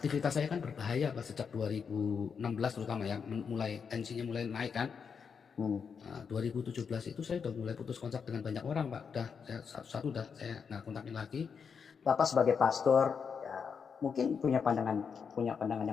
saya kan berbahaya Pak sejak 2016 terutama ya, mulai tensinya mulai naik kan. Nah, 2017 itu saya udah mulai putus kontak dengan banyak orang Pak. Udah saya satu-satu udah saya nggak kontakin lagi. Bapak sebagai pastor ya, mungkin punya pandangan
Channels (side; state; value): right; quieter; 6.3 dB